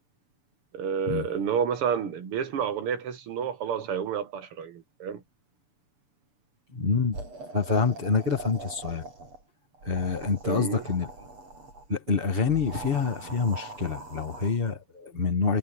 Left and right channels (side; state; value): left; late; 6.9 ms